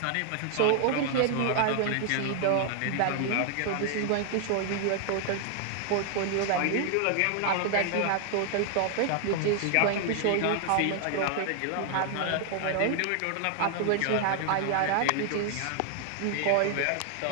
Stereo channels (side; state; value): both; different; correlation 0.00